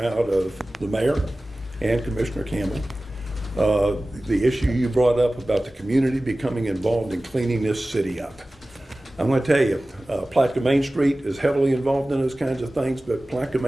of the mayor and Commissioner Campbell. The issue you brought up about the community becoming involved in cleaning this city up. I'm going to tell you, Palatka Main Street is heavily involved in those kinds of things, but Palatka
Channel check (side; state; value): both; normal; correlation 0.97